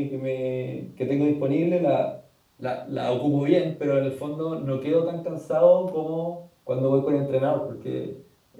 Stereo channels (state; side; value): identical; both; correlation 1.00